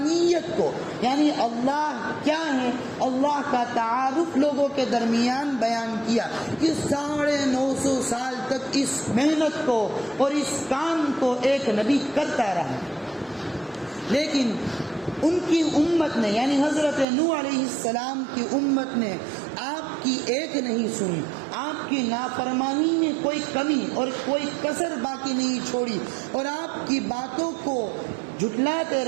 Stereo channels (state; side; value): drops out; left; at 17.1 s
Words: کو، یعنی اللہ کیا ہے، اللہ کا تعارف لوگوں کے درمیان بیان کیا کہ 950 سال تک اس محنت کو اور اس کام کو ایک نبی کرتا رہا۔ لیکن ان کی امت نے، یعنی حضرت نوح علیہ السلام کی امت نے آپ کی ایک نہیں سنی، آپ کی نافرمانی میں کوئی کمی اور کوئی کسر باقی نہیں چھوڑی، اور آپ کی باتوں کو جھٹلاتے